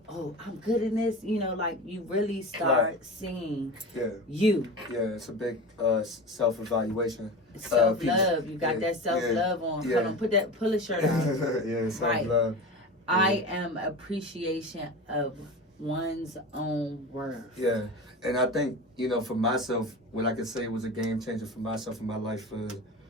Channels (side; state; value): both; normal; correlation 0.29